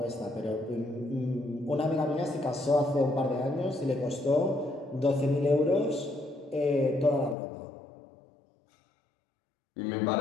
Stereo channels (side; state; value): right; drops out; at 7.4 s